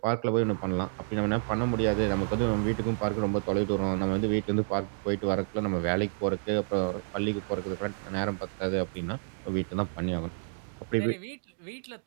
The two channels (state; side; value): silent; left; digital silence